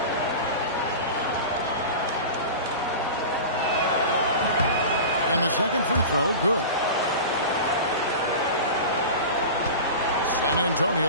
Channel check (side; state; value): both; inverted; correlation -0.31